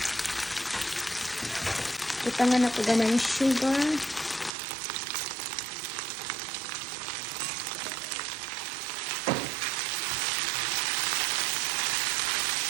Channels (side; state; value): left; drops out; at 4.5 s